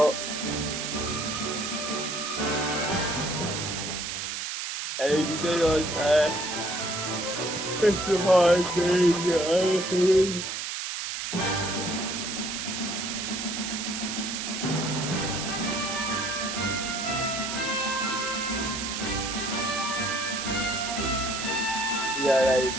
everything on that. It's a hard thing, honestly. Yeah, that is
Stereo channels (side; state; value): right; noise; hiss, 4 dB below the sound